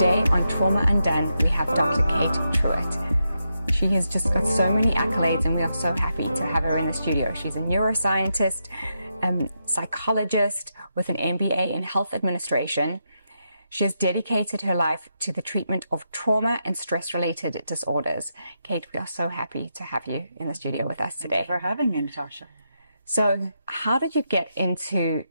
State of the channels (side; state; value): both; inverted; correlation -0.84